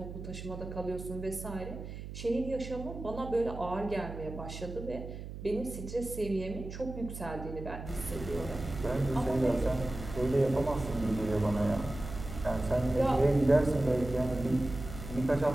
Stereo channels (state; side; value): noise; right; hum, 10 dB below the sound